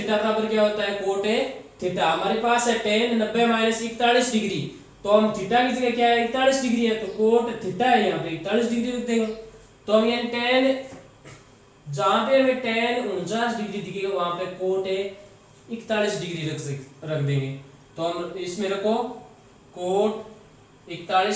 बराबर क्या होता है, कोट ए थीटा। हमारे पास है टेन 90 माइनस 41 डिग्री, तो हम थीटा की जगह क्या है 41 डिग्री है, तो कोट थीटा है यहाँ पे 41 डिग्री रख देंगे। तो हम यहाँ टेन, जहां पे हमें टेन 49 डिग्री दिखेगा वहां पे कोट ए 41 डिग्री रख देंगे। तो हम इसमें रखो कोट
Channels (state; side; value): identical; both; correlation 1.00